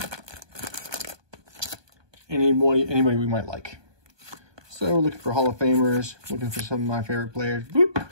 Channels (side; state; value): left; late; 1.2 ms